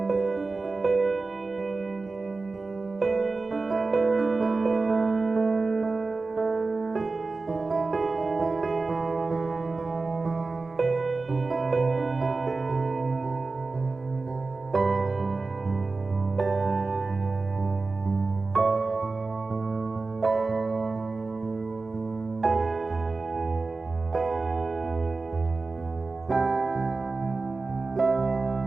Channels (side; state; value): left; quieter; 3.8 dB